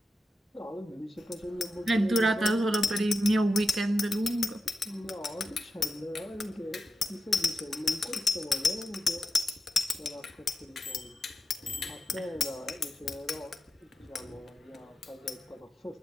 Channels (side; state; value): both; normal; correlation 0.88